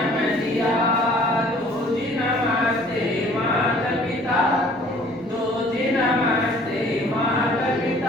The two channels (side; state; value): both; normal; correlation 0.54